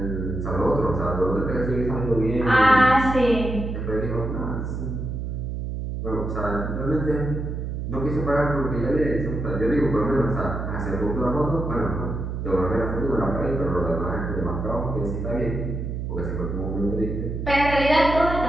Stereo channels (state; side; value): noise; right; hum, 4 dB below the sound